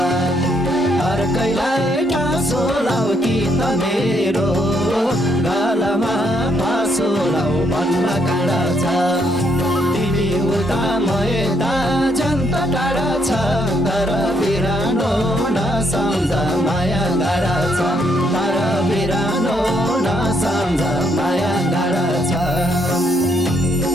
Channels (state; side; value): normal; both; correlation 0.73